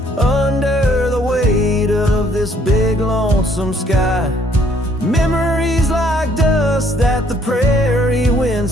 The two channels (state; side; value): normal; both; correlation 0.64